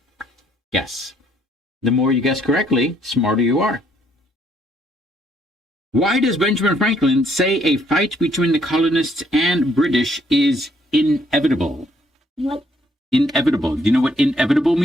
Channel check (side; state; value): both; normal; correlation 0.67